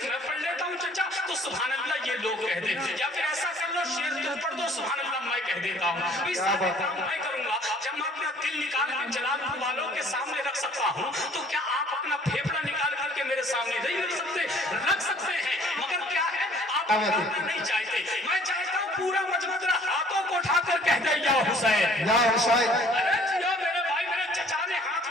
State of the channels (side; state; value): both; normal; correlation 0.55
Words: मैं पढ़ लेता हूँ चचा तो सुभान अल्लाह ये लोग कह दे, या फिर ऐसा कर लो शेर तुम पढ़ दो सुभान अल्लाह मैं कह देता हूँ। इस सारे काम मैं करूंगा। जब मैं अपना दिल निकाल के जलालपुर वालों के सामने रख सकता हूँ, तो क्या आप अपना फेफड़ा निकाल करके मेरे सामने नहीं रख सकते? रख सकते हैं, मगर क्या है आप नहीं चाहते। मैं चाहता हूँ पूरा मजमा जरा हाथों को उठाकर कह दे या हुसैन, या हुसैन। अरे जियो मेरे भाई, मेरे चचा ने हाथ